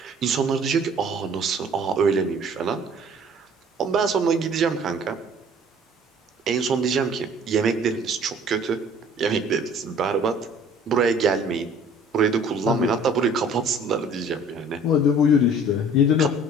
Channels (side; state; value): both; normal; correlation 0.52